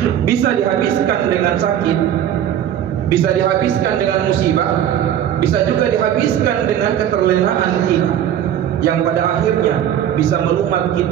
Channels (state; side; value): quieter; left; 10.4 dB